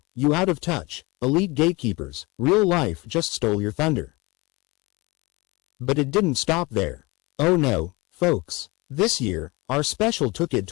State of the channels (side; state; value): right; quieter; 24.2 dB